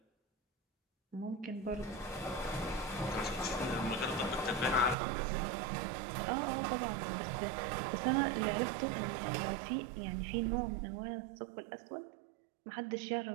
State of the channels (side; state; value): left; drops out; at 5.0 s